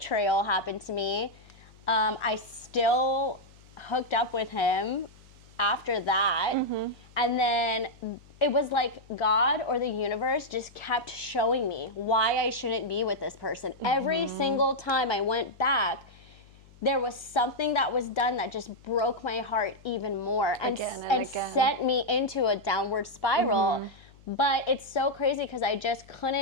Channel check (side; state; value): left; noise; hum, 25 dB below the sound